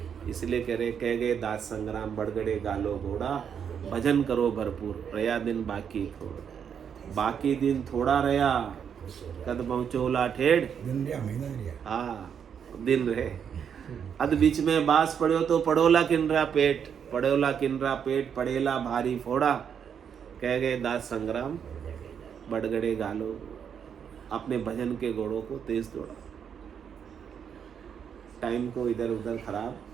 इसलिए कह गए दास संग्राम बढ़गड़े गालो घोड़ा, भजन करो भरपूर रया दिन बाकी थोड़ा, बाकी दिन थोड़ा रया कद पहुंचोला ठेड़ हाँ दिन रहे अद बीच में बास पड़ो तो पड़ोला किनरा पेट, पड़ोला किनरा पेट पड़ेला भारी फोड़ा, कह गए दास संग्राम बढ़गड़े गालो, अपने भजन के घोड़ों को तेज दौड़ा, टाइम को इधर उधर खराब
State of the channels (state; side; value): quieter; left; 7.7 dB